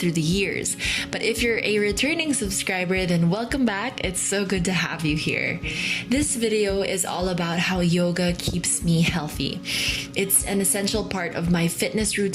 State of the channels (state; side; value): identical; both; correlation 1.00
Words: the years. But if you're a returning subscriber, then welcome back. It's so good to have you here. This video is all about how yoga keeps me healthy. It's an essential part of my fitness